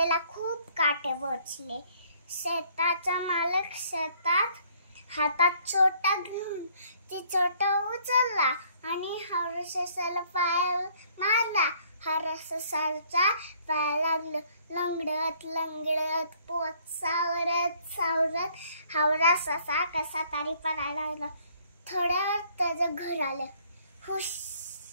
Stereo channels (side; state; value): both; inverted; correlation -0.62